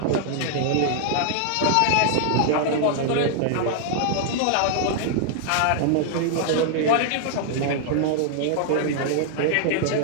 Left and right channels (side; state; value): both; different; correlation 0.00